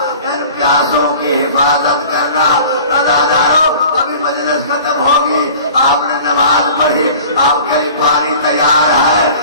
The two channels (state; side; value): inverted; both; correlation -0.44